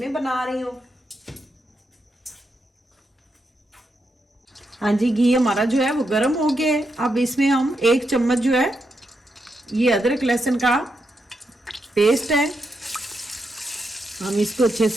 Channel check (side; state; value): both; normal; correlation 0.83